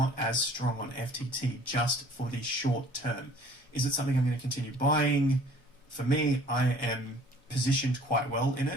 as strong on FTT just for the short term. Is it something I'm going to continue buying? For me, I am positioned quite well in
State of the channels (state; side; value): normal; both; correlation 0.53